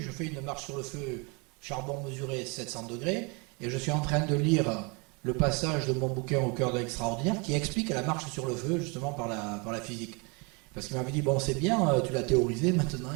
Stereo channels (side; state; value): left; quieter; 31.0 dB